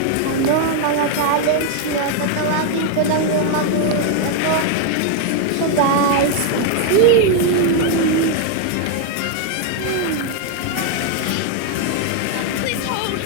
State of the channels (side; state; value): both; different; correlation 0.00